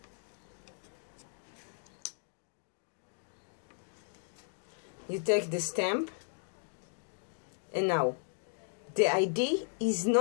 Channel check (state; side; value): silent; right; 54 dB below the other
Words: you take the stamp, and now the idea is